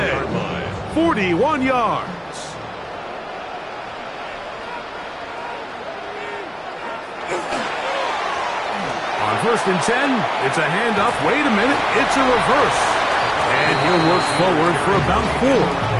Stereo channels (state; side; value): identical; both; correlation 1.00